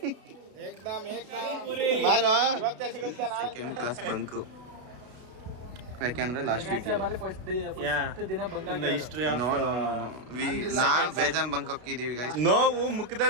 ಏಕ್ದಮ್ ಪೂರಿ ಬಾರೋ ಇವತ್ತೇ ಸಿಗುತ್ತೆ ಸೆಕೆಂಡ್ ಕ್ಲಾಸ್ ಬಂಕು ಯಾಕೆಂದ್ರೆ last week no no no no ನಾ ಬೇಜಾನ್ ಬಂಕ್ ಹೋಗಿದೀವಿ ಗೈಸ್. ನೋವು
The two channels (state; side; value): late; left; 32 ms